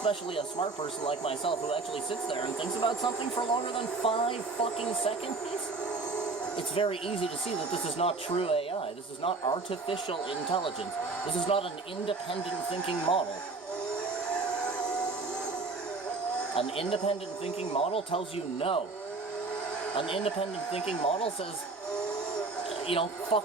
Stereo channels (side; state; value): left; quieter; 3.8 dB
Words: a smart person like myself who actually sits there and thinks about something for longer than 5 fucking seconds. It's very easy to see that this is not true AI. This is not artificial intelligence. This is not an independent thinking model. An independent thinking model tells you no. An independent thinking model says,